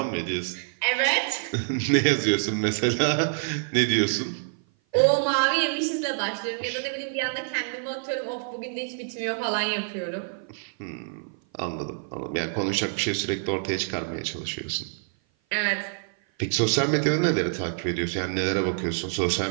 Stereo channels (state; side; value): silent; left; 56 dB below the other